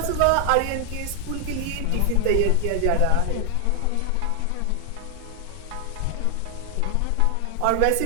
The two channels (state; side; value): different; both; correlation 0.00